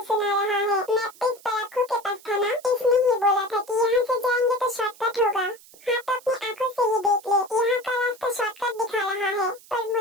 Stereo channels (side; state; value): right; noise; hiss, 23 dB below the sound